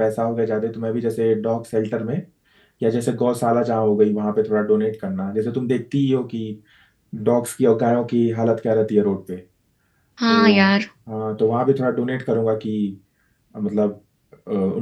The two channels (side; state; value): both; identical; correlation 1.00